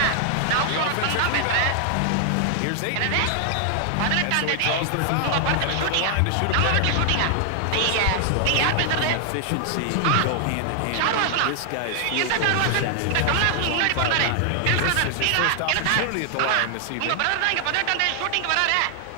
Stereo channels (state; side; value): different; both; correlation 0.00